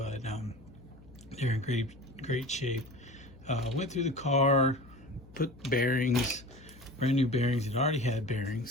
they're in great shape. Went through the car, put bearings, brand new bearings. It already had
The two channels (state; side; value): noise; left; hum, 22 dB below the sound